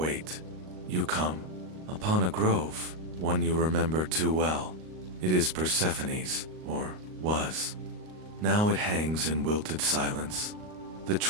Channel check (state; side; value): late; left; 38 ms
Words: You come upon a grove, one you remember too well. It is Persephone's, or was. Now it hangs in wilted silence. The